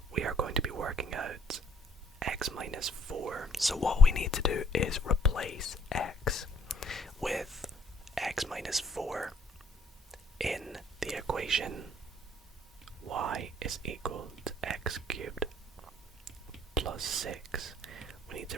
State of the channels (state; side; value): normal; both; correlation 0.64